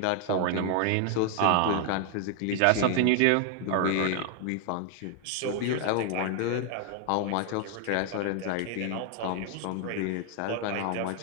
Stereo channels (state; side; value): different; both; correlation 0.00